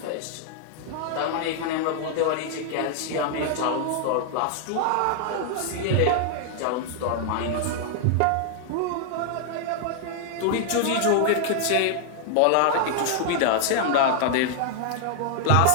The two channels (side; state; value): both; different; correlation 0.00